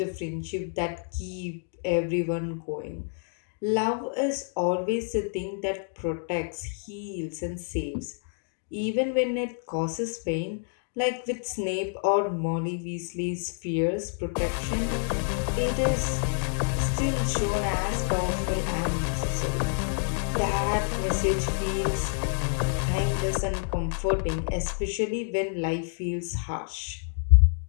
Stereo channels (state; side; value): silent; right; 55 dB below the other